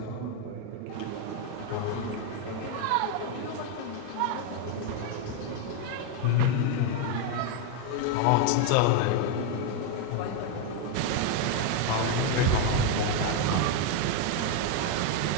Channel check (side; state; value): both; different; correlation 0.01